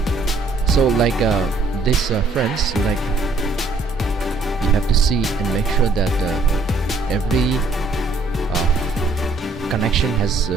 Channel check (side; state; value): left; quieter; 3.5 dB